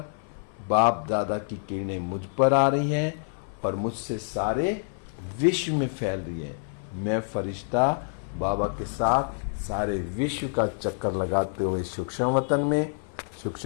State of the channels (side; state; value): right; silent; 56 dB below the other